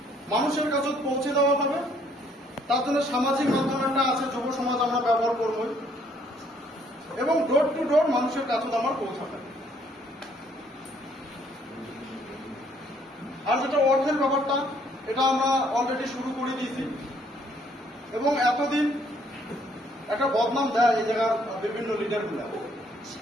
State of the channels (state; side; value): normal; both; correlation 0.65